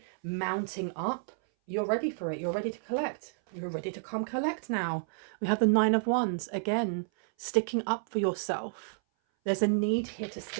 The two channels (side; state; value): left; silent; 57 dB below the other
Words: mounting up. You're ready for it. You're ready to collect. You're ready to come collect now. We have the Nine of Wands again, sticking up for yourself. There's a need here to